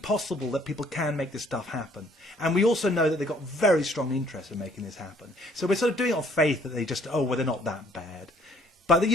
that people can make this stuff happen. And we also know that they've got very strong interest in making this happen. So we're sort of doing it on faith that they just, they're not that bad. But,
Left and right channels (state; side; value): normal; both; correlation 0.61